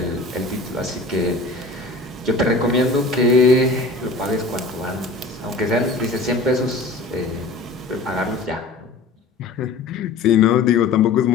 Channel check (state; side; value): quieter; right; 3.3 dB